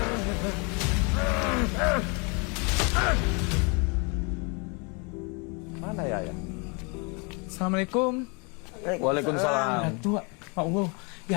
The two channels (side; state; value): right; quieter; 32.5 dB